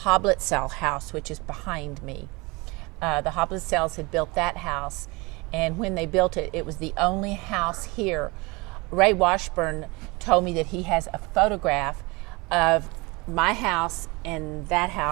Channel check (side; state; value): left; quieter; 25.6 dB